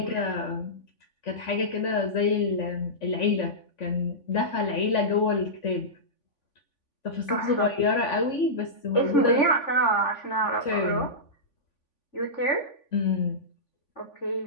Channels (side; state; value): right; late; 3.5 ms